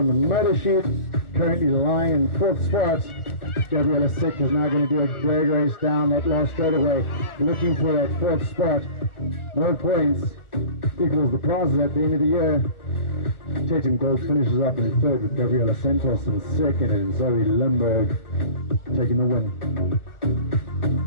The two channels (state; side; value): late; right; 1.4 ms